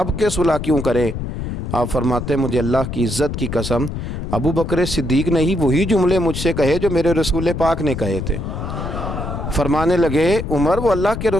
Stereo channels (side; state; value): left; noise; rumble, 5 dB below the sound